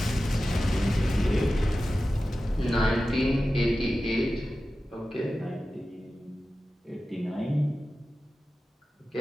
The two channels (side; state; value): both; normal; correlation 0.94